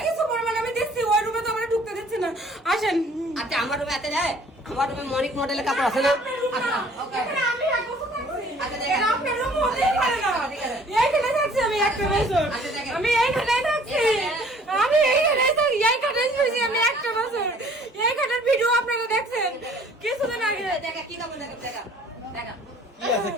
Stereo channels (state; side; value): normal; both; correlation 0.54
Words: কিছু পরিমাণ আমি দেখছি ওই রুমে তো আমারে ঢুকতে দিচ্ছে না আসেন আচ্ছা আমার রুমে এতে যায় আমার রুমে মনিক মডেলের কাপড় আছে না আচ্ছা ওকে আমি এক বছর থাকছি আচ্ছা দেখেন আপনার রুম হতেই পারে না এইখানে থাকছি আমি একটা বছর আমি এইখানে থাকছি আমি এইখানে থাকি এইখানে থাকছি আমি একটা বছর এইখানের ভিডিও আপনারা দেখছেন কিছুদিন আগে দেখা কি কাপড় দেখা দেখা দেখা